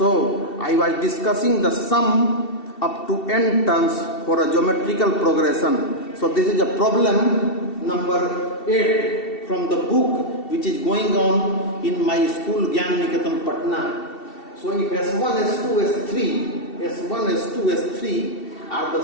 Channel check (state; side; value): late; right; 2.7 ms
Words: I was discussing the sum up to n terms for a geometrical progression. So this is a problem number 8 from the book which is going on in my school Geometrical Patna. So if S1, S2, S3, S1, S2, S3 are the